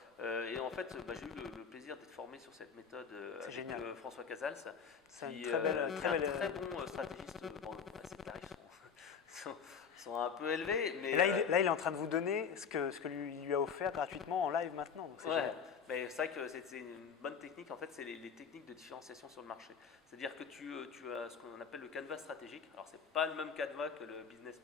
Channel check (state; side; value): quieter; right; 6.6 dB